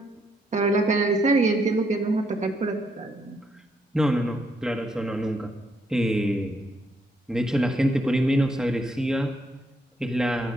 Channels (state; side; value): normal; both; correlation 0.74